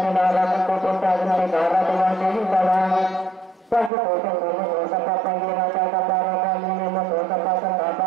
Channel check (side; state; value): left; drops out; at 3.9 s